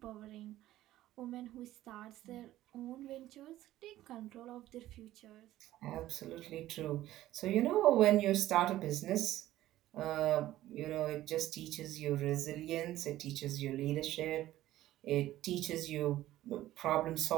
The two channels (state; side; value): quieter; left; 14.6 dB